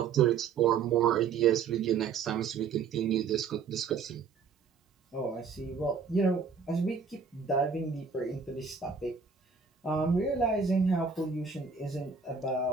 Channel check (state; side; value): quieter; left; 5.8 dB